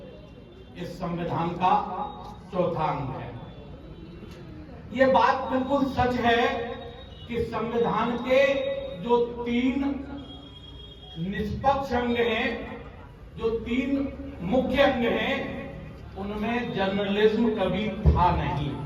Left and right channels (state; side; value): identical; both; correlation 1.00